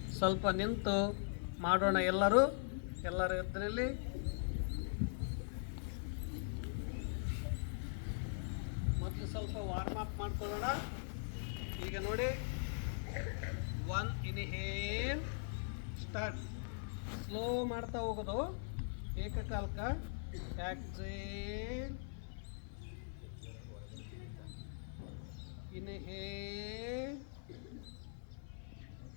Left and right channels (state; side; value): silent; right; 50 dB below the other